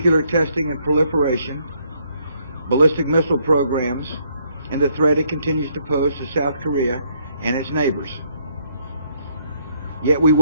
testing and proliferation, ballistic missile programs, and the threat it continues to pose to South Korea and its neighbors. Yet we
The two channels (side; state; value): both; inverted; correlation -0.69